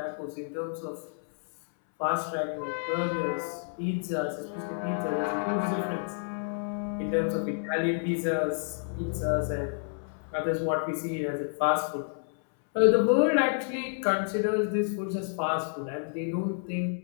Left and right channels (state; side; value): silent; right; 58 dB below the other